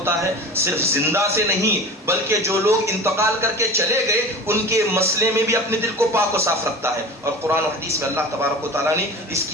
ہے؟ صرف زندہ سے نہیں بلکہ جو لوگ انتقال کر کے چلے گئے ان کے مسئلے میں بھی اپنے دل کو پاک و صاف رکھتا ہے, اور قرآن و حدیث میں اللہ تبارک و تعالیٰ نے اس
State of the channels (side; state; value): both; normal; correlation 0.34